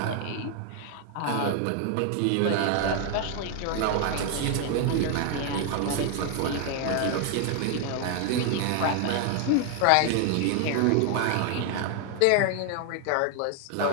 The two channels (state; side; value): different; both; correlation 0.00